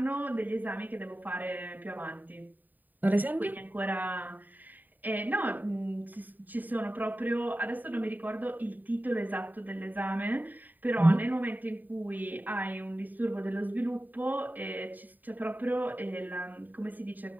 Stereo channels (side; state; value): left; late; 0.087 ms